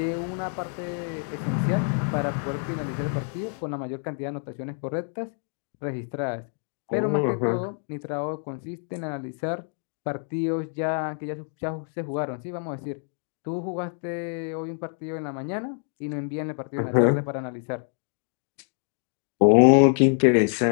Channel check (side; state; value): right; silent; 55 dB below the other